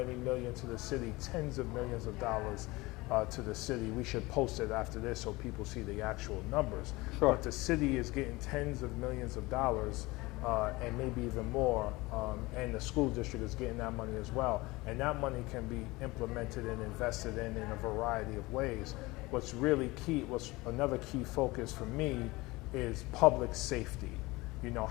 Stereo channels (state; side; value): quieter; right; 21.8 dB